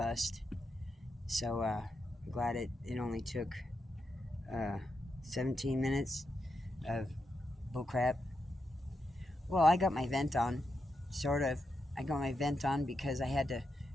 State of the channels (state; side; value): normal; both; correlation 0.85